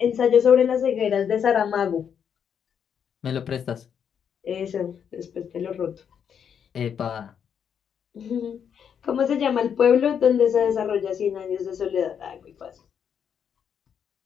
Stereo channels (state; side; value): quieter; right; 7.9 dB